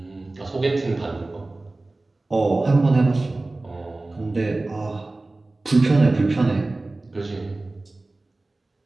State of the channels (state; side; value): quieter; left; 3.0 dB